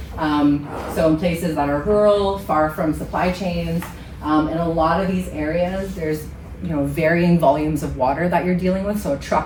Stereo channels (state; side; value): identical; both; correlation 1.00